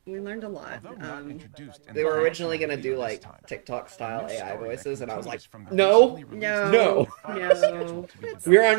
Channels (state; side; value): silent; left; digital silence